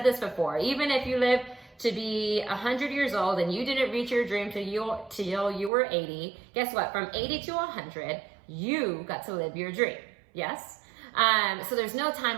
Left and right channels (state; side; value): drops out; left; at 5.7 s